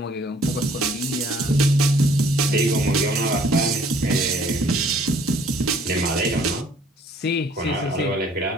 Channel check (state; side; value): normal; both; correlation 0.59